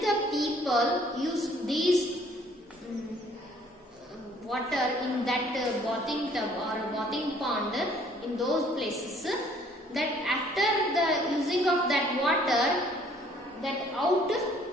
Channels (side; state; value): both; normal; correlation 0.60